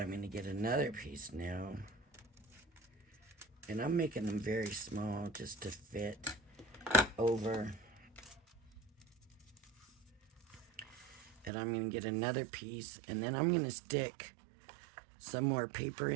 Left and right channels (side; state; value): left; drops out; at 11.5 s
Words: going to get another piece now. And I'm making them very small just to fit over. And I'm going to get another piece. And then I'm going to stick some more paper